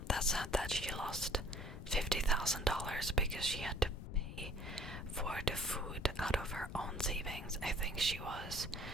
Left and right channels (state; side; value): noise; left; rumble, 8 dB below the sound